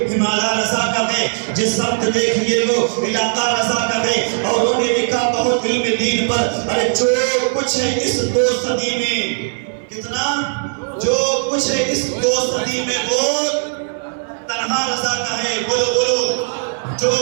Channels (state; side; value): silent; left; 67 dB below the other